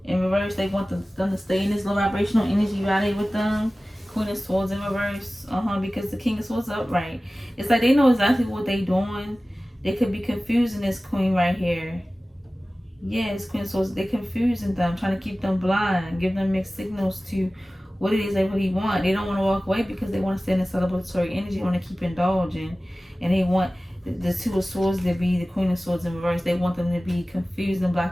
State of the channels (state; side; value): normal; both; correlation 0.97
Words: in reverse. They want them to stay in this low vibrational energy while they with them. Queen of Swords in reverse. Because the King of Swords is upright. It's like they know exactly what they doing. They could be confusing this Queen right here. Yes, Queen of Swords. They're confusing them, trying to keep them blind, give them mixed signals to what it is they really want. They don't want to walk away because they want to stay in the celebratory energy. They want to keep indulging. And they want the Two of Swords to be the Queen of Swords in reverse. They want them to be confused and